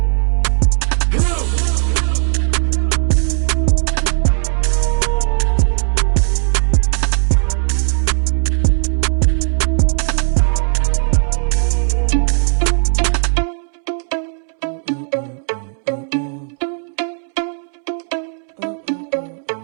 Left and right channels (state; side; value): silent; left; 56 dB below the other